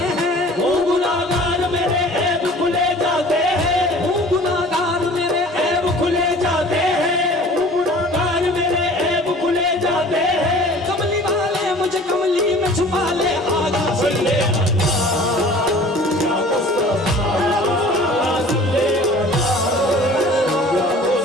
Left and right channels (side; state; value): both; normal; correlation 0.46